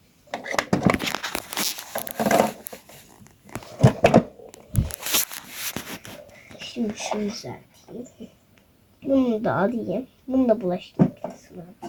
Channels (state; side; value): identical; both; correlation 1.00